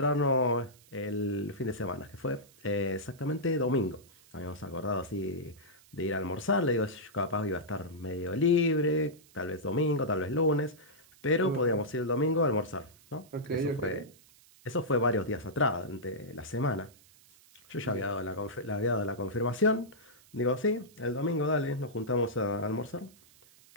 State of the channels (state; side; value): noise; right; hiss, 26 dB below the sound